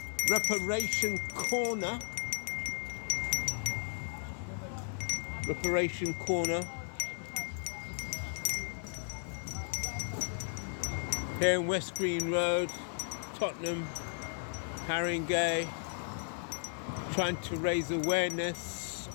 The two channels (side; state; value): right; silent; digital silence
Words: Reparation Corner. Reparation Corner. Here in West Green Road, Tottenham, Haringey, trying to raise awareness